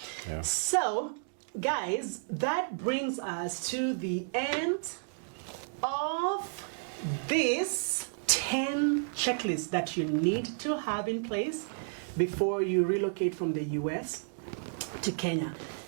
So, guys, that brings us to the end of this 10 checklists that you need to have in place before you relocate from the US to Kenya.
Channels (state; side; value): silent; left; digital silence